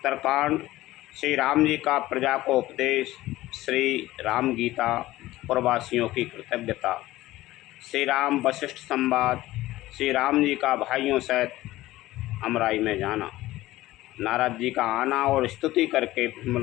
श्री राम जी का प्रजा को उपदेश, श्री राम गीता, प्रवासियों की कृतज्ञता, श्री राम वशिष्ठ संवाद, श्री राम जी का भाइयों सहित अमराई में जाना, नारद जी का आना और स्तुति करके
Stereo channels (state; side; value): quieter; right; 16.7 dB